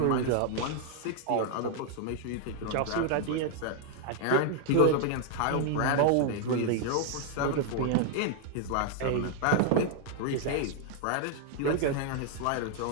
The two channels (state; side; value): different; both; correlation 0.00